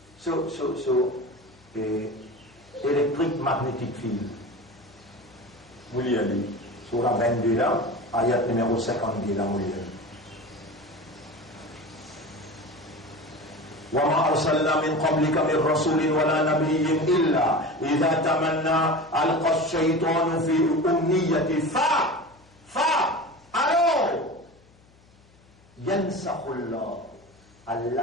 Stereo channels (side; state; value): left; noise; hum, 29 dB below the sound